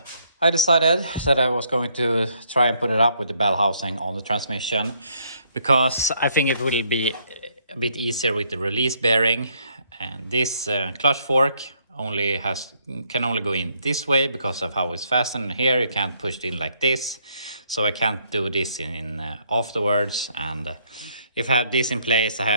I decided that I was going to try and put it up with the bell housing on the transmission, because I think it will be a bit easier with the release bearing. And this clutch fork can only go in this way because of how it's fastened. Here you can't push it in like this, so I can't do this in afterwards. And if I have this in place, I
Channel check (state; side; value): inverted; both; correlation -0.70